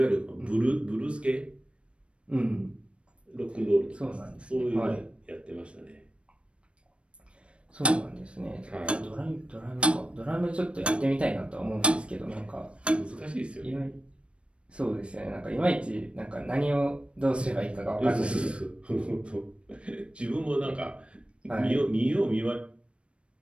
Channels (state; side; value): late; left; 0.059 ms